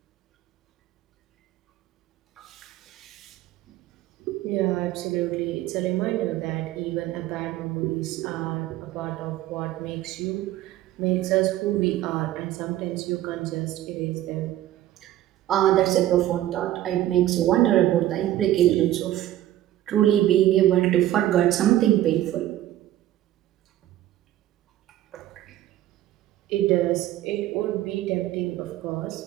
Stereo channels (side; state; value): left; quieter; 13.6 dB